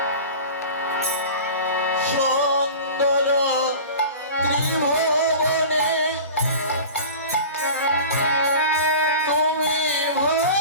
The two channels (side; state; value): both; inverted; correlation -0.36